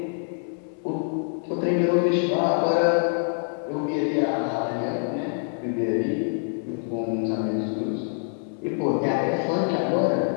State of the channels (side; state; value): right; silent; 61 dB below the other